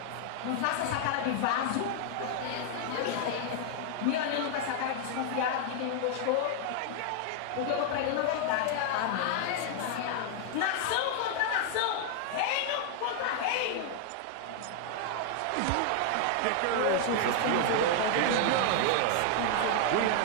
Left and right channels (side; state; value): both; different; correlation 0.00